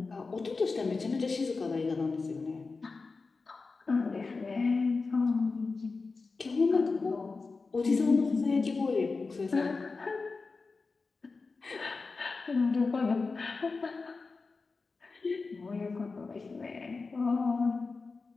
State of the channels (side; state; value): right; quieter; 4.2 dB